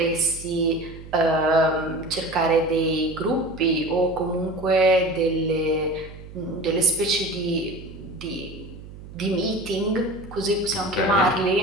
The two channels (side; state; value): right; noise; hum, 15 dB below the sound